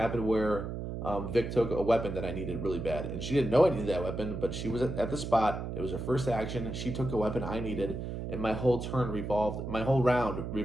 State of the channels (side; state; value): right; noise; hum, 5 dB below the sound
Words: where Vic took a weapon that I needed really bad. And she didn't know I needed that weapon, but she was at the spot. It was her first action. She took a weapon I needed, and my whole round revolved